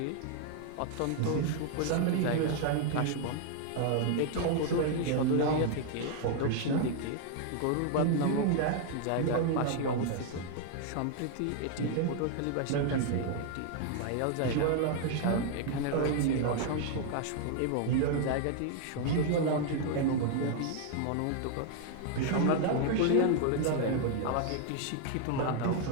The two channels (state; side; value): different; both; correlation 0.00